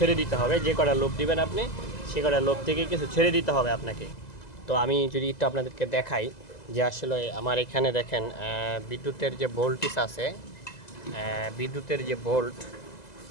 দিতে হবে, যে কটা লোভ দিবেন আপনি সে কটা লোভ থেকে কিছু ছেড়ে দিতে হবে আপনাকে। তো আমি যদি একটু আপনাদেরকে দেখাই যে আসলে আমার এখানে দেখেন বিদ্যুতের যে ভোল্টেজ আছে, বিদ্যুতের যে ভোল্ট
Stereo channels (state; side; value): late; right; 2.0 ms